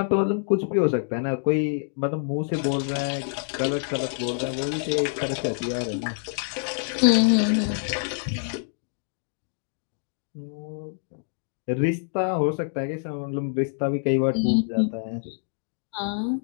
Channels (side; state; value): right; silent; digital silence